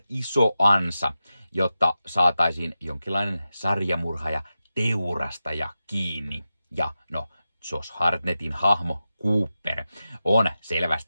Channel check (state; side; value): inverted; both; correlation -0.92